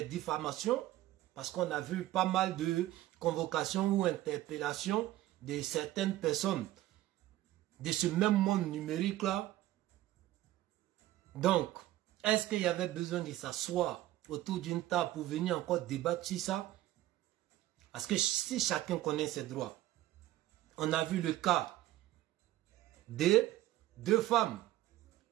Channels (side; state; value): left; quieter; 15.1 dB